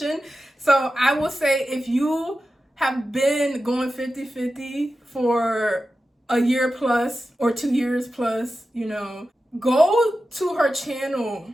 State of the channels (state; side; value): normal; both; correlation 0.92